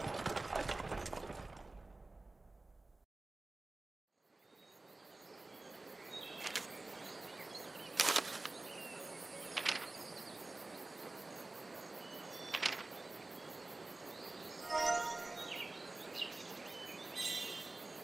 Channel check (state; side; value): quieter; left; 3.1 dB